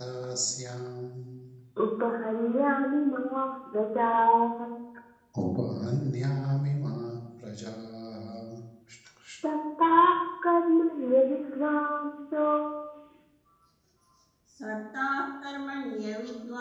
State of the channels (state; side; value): identical; both; correlation 1.00